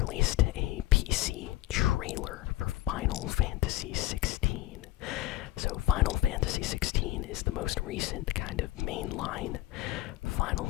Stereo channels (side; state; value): right; quieter; 15.1 dB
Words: a PC trailer for Final Fantasy 16. So Final Fantasy 16 is the most recent kind of mainline Final